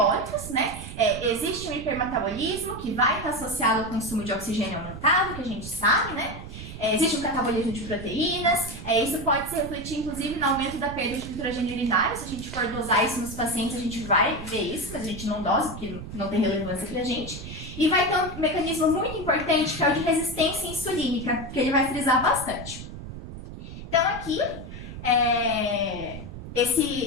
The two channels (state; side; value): noise; right; rumble, 11 dB below the sound